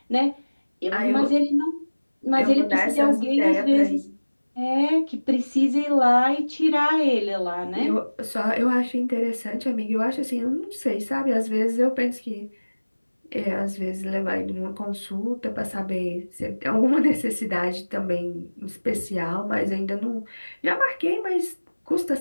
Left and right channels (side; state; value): both; inverted; correlation -1.00